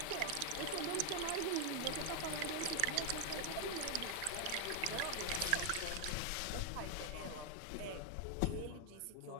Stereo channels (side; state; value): both; different; correlation 0.00